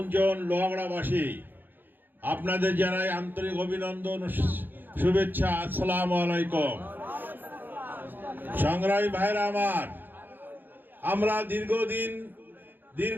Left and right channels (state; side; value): late; left; 0.091 ms